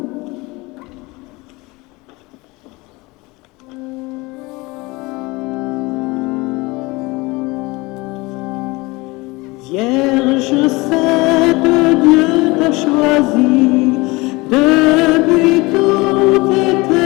Vierge sainte, Dieu t'a choisi depuis toute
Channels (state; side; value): quieter; right; 23.5 dB